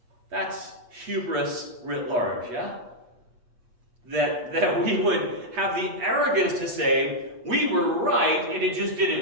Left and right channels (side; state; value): left; late; 8.3 ms